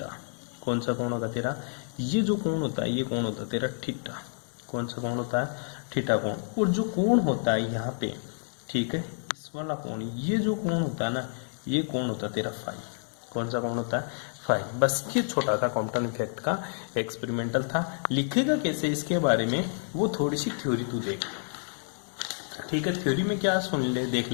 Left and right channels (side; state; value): right; silent; 59 dB below the other